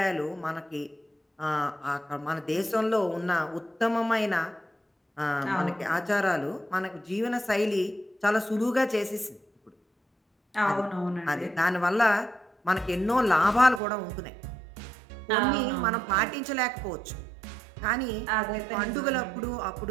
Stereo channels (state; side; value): drops out; left; at 13.8 s